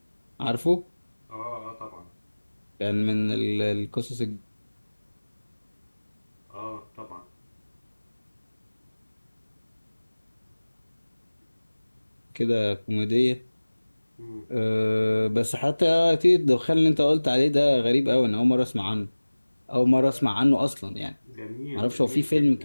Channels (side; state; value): both; inverted; correlation -1.00